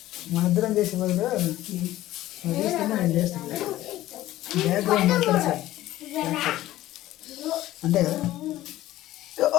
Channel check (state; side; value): quieter; right; 15.0 dB